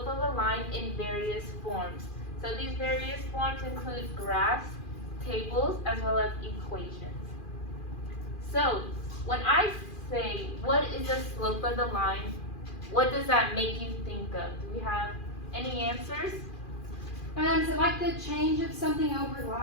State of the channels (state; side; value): late; right; 2.4 ms